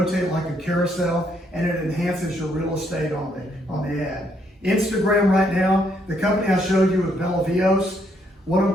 like a carousel, and it enhances your real estate on the ad. Instagram right now, the company I showed you with Bella Vios,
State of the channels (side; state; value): both; normal; correlation 0.72